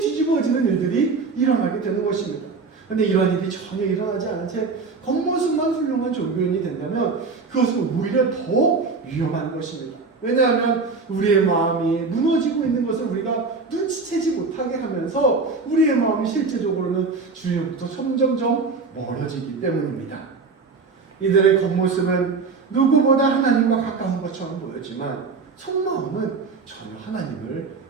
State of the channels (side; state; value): left; quieter; 4.5 dB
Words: 일들이 일어나게 되는 것입니다. 그런데 이런 일이 전혀 일어나지 않은 채 겉모습만 훌륭한 종교인이 된다면 그것은 오히려 더 위험한 것입니다. 왜냐하면 우리의 마음이 무너지고 있는 것을 우리가 눈치채지 못하게 하면서 우리의 마음이 실제적으로는 주님부터 점점점 멀어지기 때문입니다. 이들의 겉모습은 누구보다 하나님과 가까운 것처럼 보였지만 속마음은 전혀 하나님을